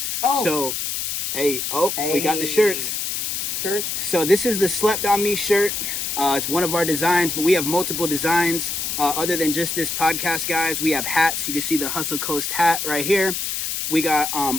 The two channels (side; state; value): left; noise; hiss, 2 dB below the sound